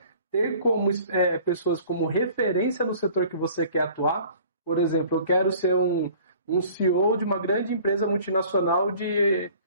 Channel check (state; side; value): inverted; both; correlation -0.50